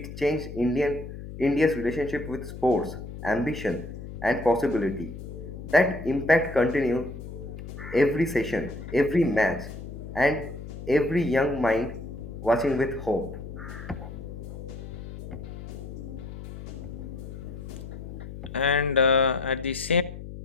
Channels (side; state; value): left; noise; hum, 11 dB below the sound